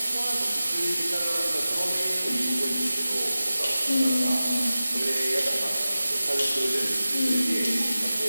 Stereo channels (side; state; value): both; inverted; correlation -0.95